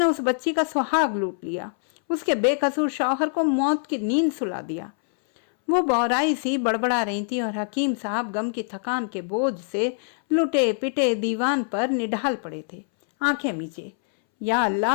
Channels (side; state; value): right; silent; 62 dB below the other